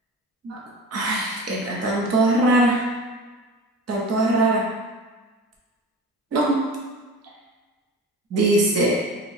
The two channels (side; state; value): both; normal; correlation 0.35